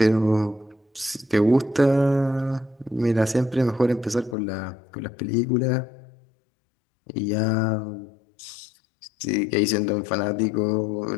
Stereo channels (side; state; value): right; drops out; at 4.4 s